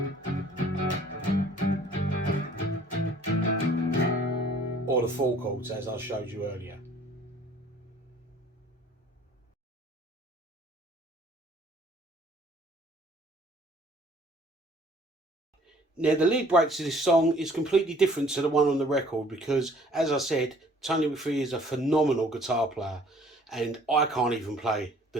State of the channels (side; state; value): both; normal; correlation 0.56